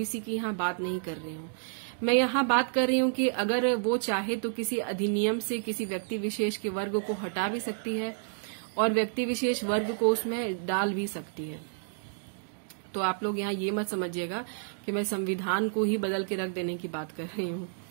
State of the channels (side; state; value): left; silent; digital silence